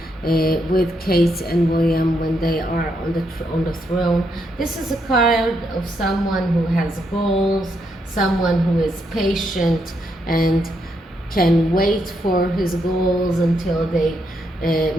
with Kate and William when they are on the throne. This is a card of someone who has goals, someone who is patient and can wait for his goals until they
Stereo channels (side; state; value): both; normal; correlation 0.79